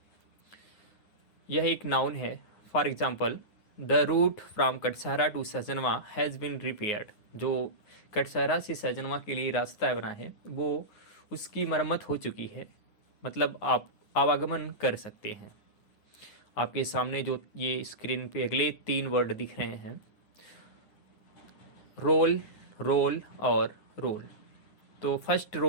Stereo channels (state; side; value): late; right; 9.6 ms